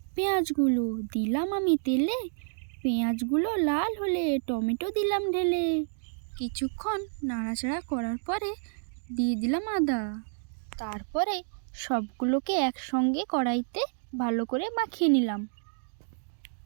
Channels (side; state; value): left; silent; digital silence